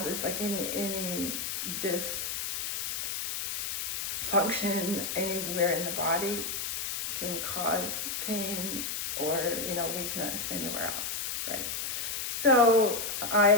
is. Like any dysfunction anywhere in the body can cause pain or weakness anywhere else, right? So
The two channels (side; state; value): left; noise; hiss, 3 dB below the sound